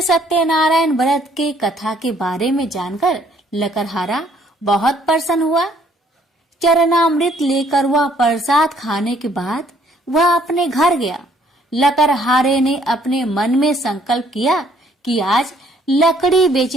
सत्यनारायण व्रत के कथा के बारे में जानकर लकड़हारा बहुत प्रसन्न हुआ। चरणामृत लेकर वह प्रसाद खाने के बाद वह अपने घर गया। लकड़हारे ने अपने मन में संकल्प किया कि आज लकड़ी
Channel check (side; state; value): both; normal; correlation 0.63